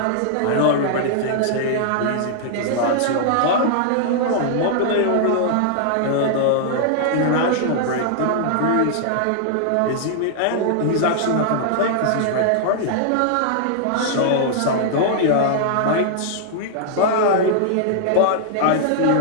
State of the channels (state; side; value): different; both; correlation -0.01